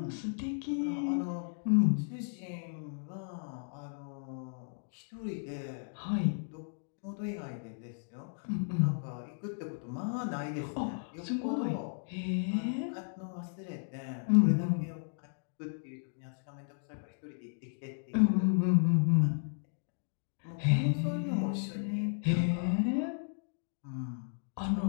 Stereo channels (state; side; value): silent; right; digital silence